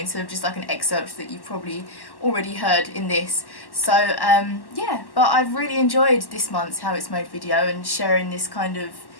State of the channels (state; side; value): late; right; 1.1 ms